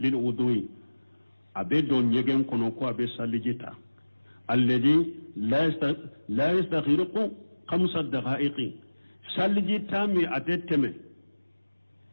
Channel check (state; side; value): inverted; both; correlation -1.00